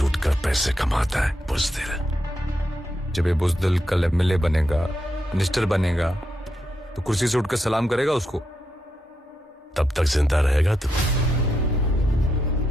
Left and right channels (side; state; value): both; normal; correlation 0.83